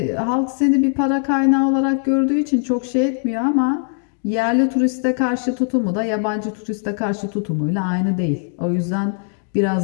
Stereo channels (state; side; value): silent; right; 57 dB below the other